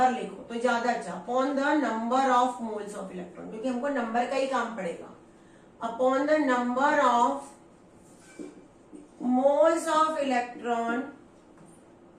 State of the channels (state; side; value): identical; both; correlation 1.00